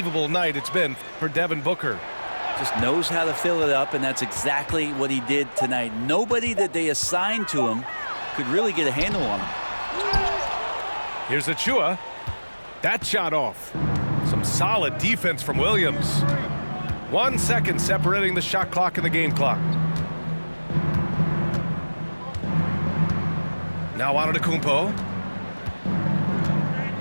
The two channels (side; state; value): both; inverted; correlation -1.00